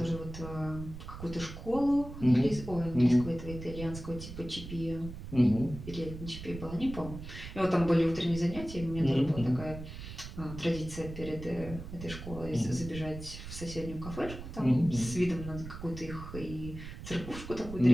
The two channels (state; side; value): noise; right; rumble, 11 dB below the sound